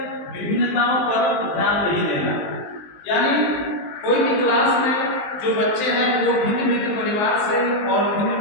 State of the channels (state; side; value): late; right; 19 ms